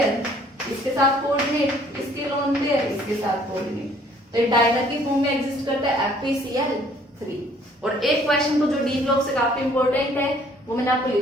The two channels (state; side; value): normal; both; correlation 0.59